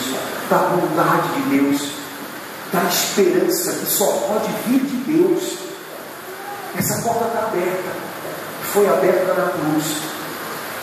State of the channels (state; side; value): identical; both; correlation 1.00